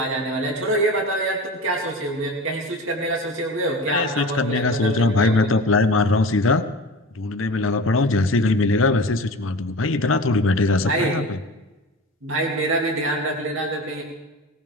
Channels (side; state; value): both; normal; correlation 0.33